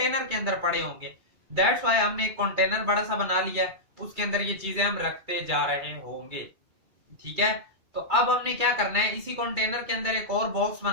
के अंदर पड़े होंगे। दैट्स व्हाई हमने एक कंटेनर बड़ा सा बना लिया, उसके अंदर ये चीजें हम रखते जा रहे होंगे, ठीक है। तो अब हमने क्या करना है, इसी कंटेनर के अंदर एक और बॉक्स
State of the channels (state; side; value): late; left; 2.3 ms